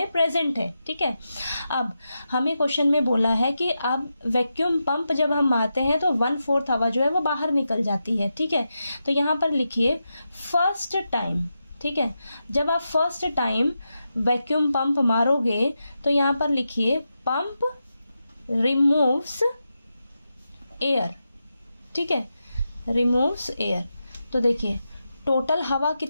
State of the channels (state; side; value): inverted; both; correlation -0.88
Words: प्रेजेंट है। ठीक है, अब हमें क्वेश्चन में बोला है कि अब वैक्यूम पंप जब हम मारते हैं तो 1/4 हवा जो है वो बाहर निकल जाती है। ठीक है, तो यहाँ पर लिखिए फर्स्ट टाइम। ठीक है, जब आप फर्स्ट टाइम वैक्यूम पंप मारोगे तो यहाँ पर लिखिए पंप रिमूव्स एयर। ठीक है, रिमूव्स एयर। तो देखिए टोटल हवा